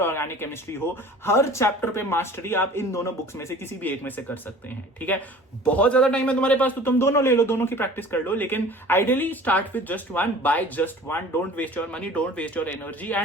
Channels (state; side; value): normal; both; correlation 0.44